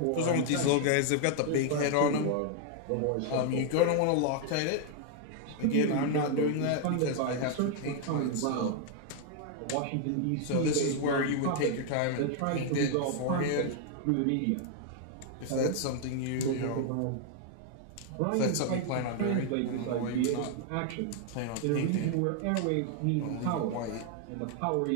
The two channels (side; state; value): both; different; correlation 0.00